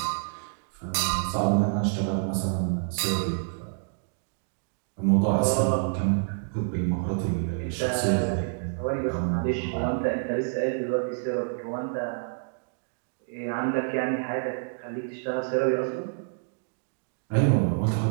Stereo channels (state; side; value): silent; left; digital silence